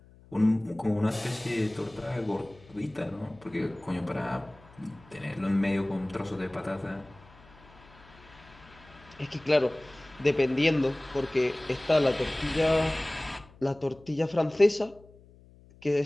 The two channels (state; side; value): noise; left; hum, 24 dB below the sound